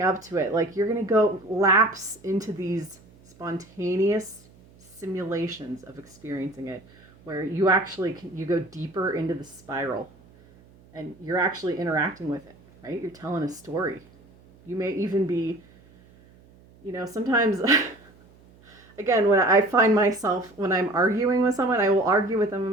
up to it. Like, you're going to go lapse into these spontaneous simulations of experiencing it, where you go deeper into the spiral and you're actually interacting with it, right? You're telling a story. You may even be, sometimes, again, when I find myself, when I'm arguing with someone, I will argue with them in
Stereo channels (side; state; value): right; noise; hum, 27 dB below the sound